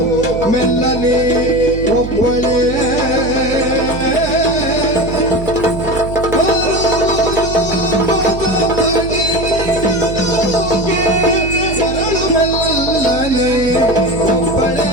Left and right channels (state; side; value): noise; right; hum, 9 dB below the sound